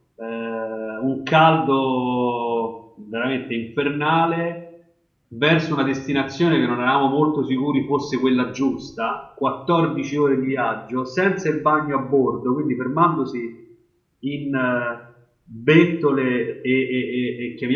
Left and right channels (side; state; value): both; identical; correlation 1.00